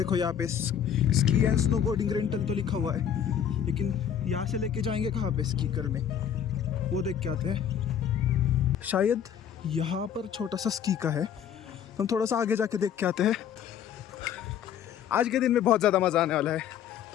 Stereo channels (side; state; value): right; quieter; 8.8 dB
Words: यहाँ पे स्की एंड स्नोबोर्डिंग रेंटल तो लिखा हुआ है, लेकिन यहाँ से लेके जाएंगे कहाँ पे स्की करने, वो देख के आते हैं। शायद यहाँ पर छोटा सा स्की का है, तो हम थोड़ा सा आगे जाके देख के आते हैं। आज के दिन में बहुत ज़्यादा मज़ा आने वाला है,